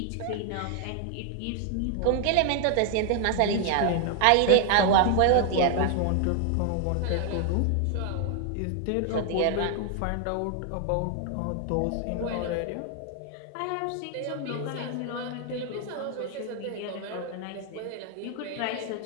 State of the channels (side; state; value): both; different; correlation 0.00